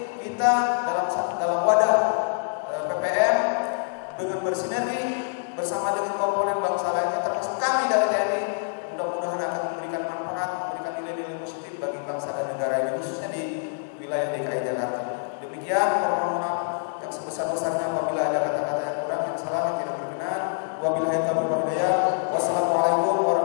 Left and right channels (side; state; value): right; silent; 58 dB below the other